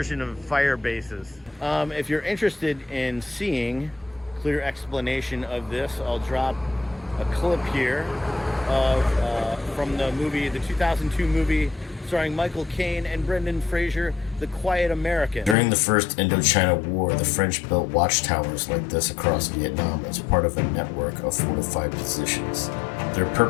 of fire bases. If you're interested in seeing clear explanation of this, I'll drop a clip here from the 2002 movie starring Michael Caine and Brendan Fraser, The Quiet American. During the First Indochina War, the French built watchtowers like this across Vietnam as part of a network of fortified positions. Their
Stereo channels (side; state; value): right; drops out; at 15.6 s